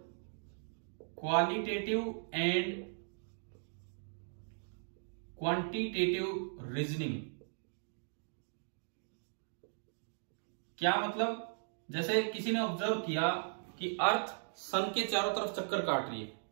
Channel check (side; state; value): left; silent; digital silence